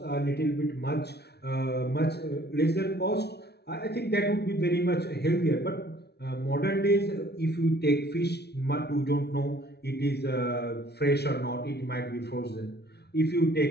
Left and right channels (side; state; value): right; late; 0.48 ms